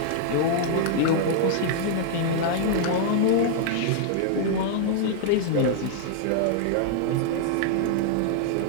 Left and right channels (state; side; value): different; both; correlation -0.01